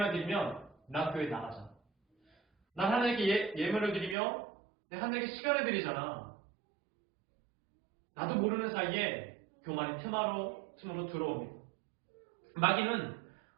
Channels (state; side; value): drops out; left; at 4.2 s